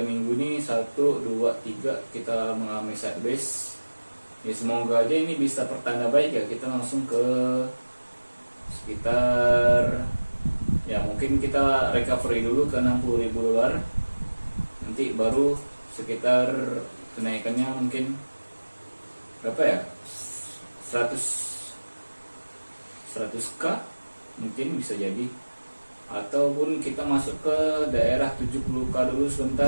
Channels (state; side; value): inverted; both; correlation -1.00